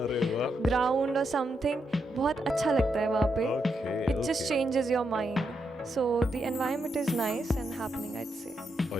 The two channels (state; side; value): normal; both; correlation 0.82